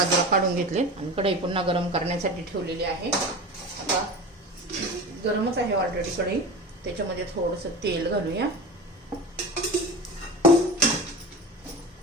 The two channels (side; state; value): both; normal; correlation 0.30